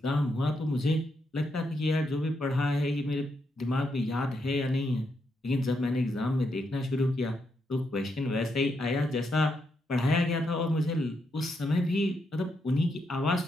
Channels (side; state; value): both; normal; correlation 0.80